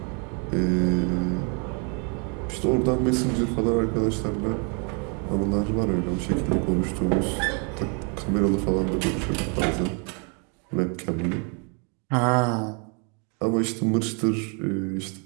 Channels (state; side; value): quieter; left; 36.6 dB